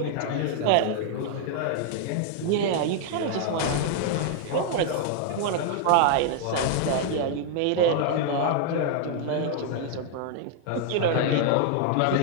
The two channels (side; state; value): both; different; correlation 0.00